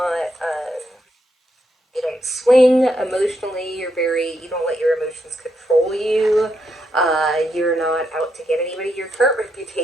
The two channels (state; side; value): normal; both; correlation 0.80